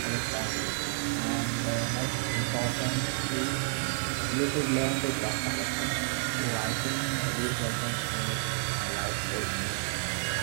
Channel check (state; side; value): silent; left; digital silence